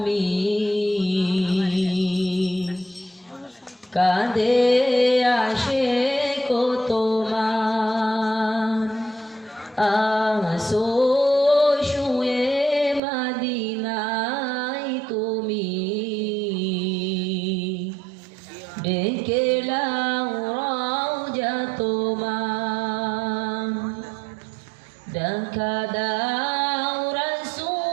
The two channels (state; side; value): drops out; left; at 13.0 s